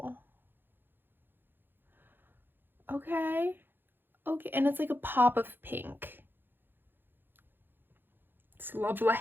Okay. Okay, and it's like a pop of pink. It's lovely.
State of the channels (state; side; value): late; left; 0.099 ms